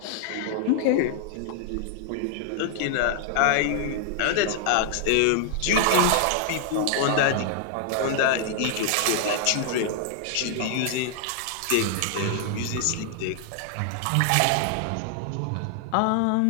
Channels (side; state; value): both; different; correlation 0.00